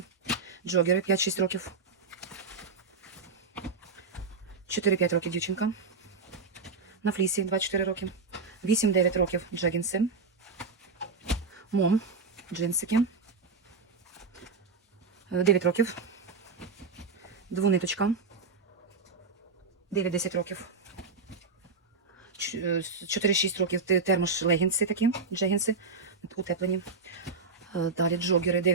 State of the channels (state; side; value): quieter; left; 4.4 dB